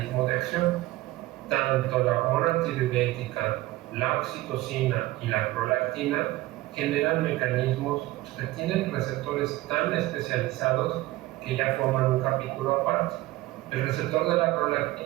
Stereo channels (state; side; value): quieter; left; 18.0 dB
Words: de acción. Tanto la hormona antidiurética, la oxitocina y la prolactina generan mecanismos que tienen receptores tan especializados que ya forman un capítulo aparte. El receptor de la